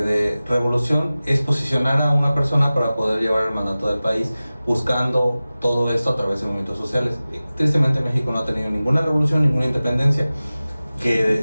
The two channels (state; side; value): inverted; both; correlation -0.97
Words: revolución, es posicionar a una persona para poder llevar el mandato del país, buscando todo esto a través de movimientos sociales. Tristemente México no ha tenido ninguna revolución, ninguna independencia,